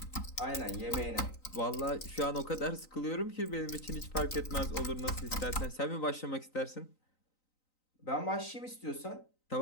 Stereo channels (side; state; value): right; late; 3.9 ms